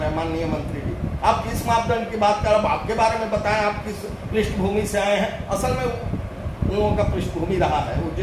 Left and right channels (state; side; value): identical; both; correlation 1.00